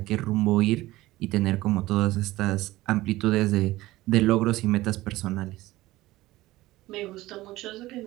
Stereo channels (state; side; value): quieter; left; 17.6 dB